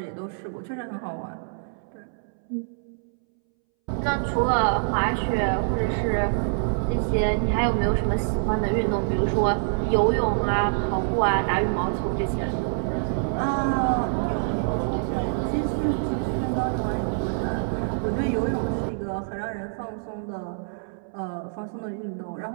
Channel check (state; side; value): silent; left; 61 dB below the other